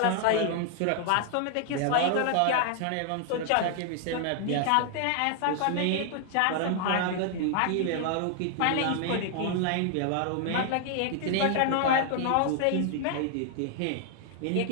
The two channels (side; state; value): both; different; correlation 0.00